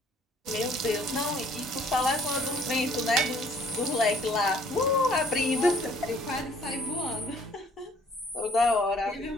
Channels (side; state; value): both; normal; correlation 0.58